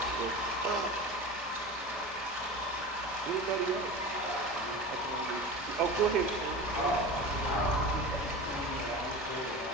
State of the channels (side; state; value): both; normal; correlation 0.31